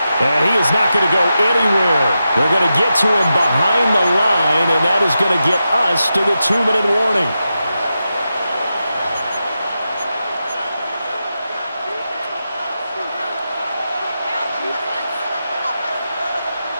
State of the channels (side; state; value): both; inverted; correlation -0.89